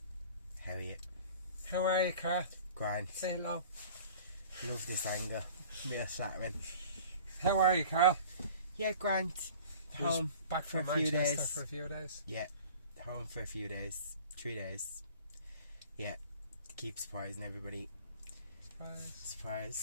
How are you? How are you, Carl? Grand. Say hello. Love this angle. Real flattering. How are you, Carl? Yeah, grand. Home back for from a few Manchester days. for a few days. Yeah, home for a few days. 3 days. Yeah, to keep surprising everybody.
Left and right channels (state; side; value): inverted; both; correlation -0.44